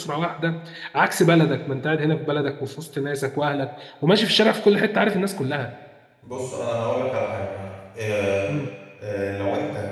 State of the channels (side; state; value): both; identical; correlation 1.00